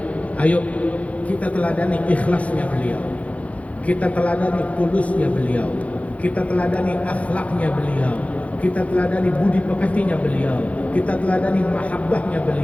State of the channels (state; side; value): late; right; 0.066 ms